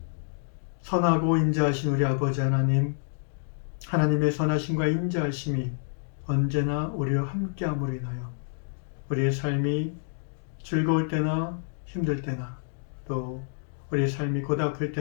선하고 인자하신 우리 아버지 하나님, 하나님의 선하심과 인자하심이 언제나 우리와 함께함으로 인하여 우리의 삶이 즐거울 때나 힘들 때나 또 우리의 삶이 고달플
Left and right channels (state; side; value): silent; right; digital silence